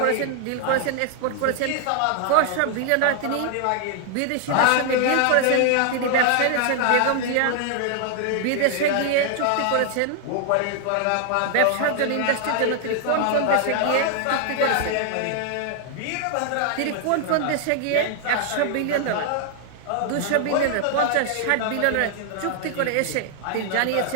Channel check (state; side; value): different; both; correlation 0.00